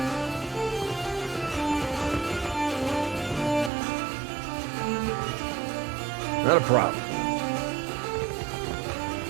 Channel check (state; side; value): drops out; left; at 3.7 s